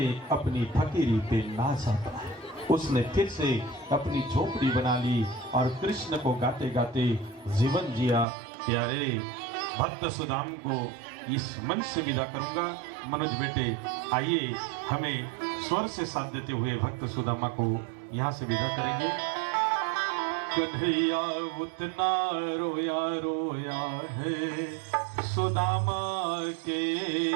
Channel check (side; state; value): left; drops out; at 8.2 s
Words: अपनी फकीरी पे नाज आता है। उसने फिर से अपनी झोपड़ी बना ली और कृष्ण को गाते गाते जीवन जिया। प्यारे भक्त सुदाम को इस मन से विदा करूंगा। मनोज बेटे आइए, हमें स्वर से साथ देते हुए भक्त सुदामा को यहाँ से विदा करेंगे। कन्हैया उतना रोया रोया है सुदामा के